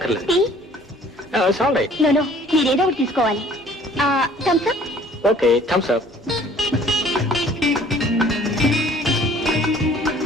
Tea? It's all right. No, మీరేదో ఒకటి తీసుకోవాలి. Thums Up. Okay, Thums Up.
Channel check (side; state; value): both; normal; correlation 0.54